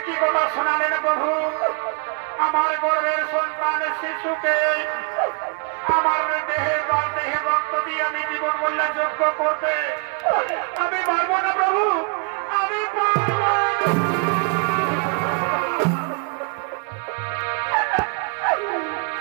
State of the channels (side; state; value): left; quieter; 34.7 dB